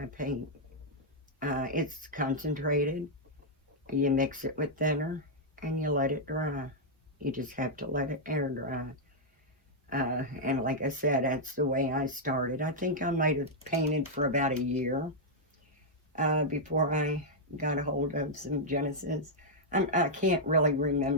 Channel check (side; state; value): both; normal; correlation -0.05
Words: paint. It's concentrated. You mix it with thinner and you let it dry. You just have to let it air dry. And like I said, that's the way I started. I think I might have painted for about a year before I got a hold of some Genesis. I can't really